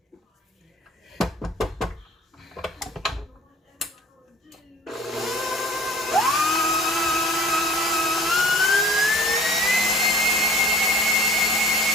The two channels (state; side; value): normal; both; correlation 0.47